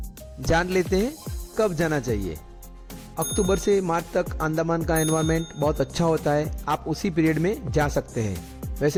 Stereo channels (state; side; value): identical; both; correlation 1.00